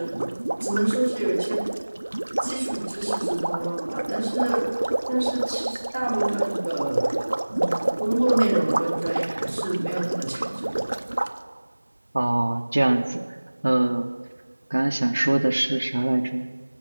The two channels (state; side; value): inverted; both; correlation -1.00